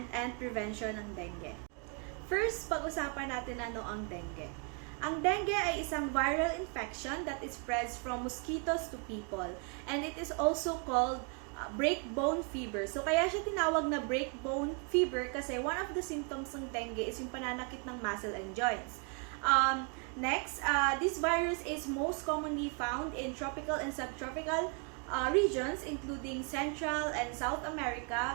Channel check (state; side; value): quieter; left; 37.7 dB